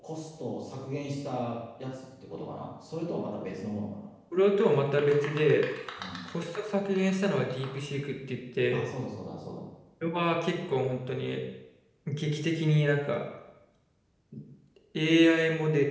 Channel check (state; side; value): identical; both; correlation 1.00